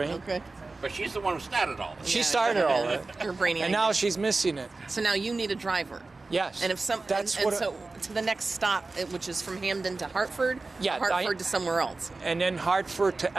Okay. But she's the one who started all this. She started all that. You're brainy. And now she's missing it. So now you need a driver. Yes. And if so to the next stop, which is from Hamden to Hartford, Hartford to somewhere else. And then Hartford to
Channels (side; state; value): left; quieter; 3.5 dB